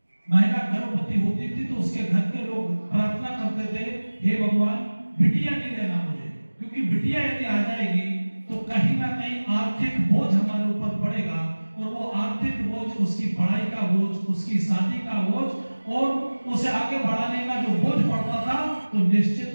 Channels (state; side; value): inverted; both; correlation -1.00